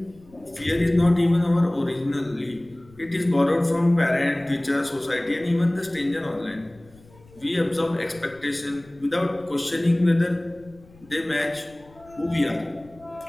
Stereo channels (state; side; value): noise; left; rumble, 26 dB below the sound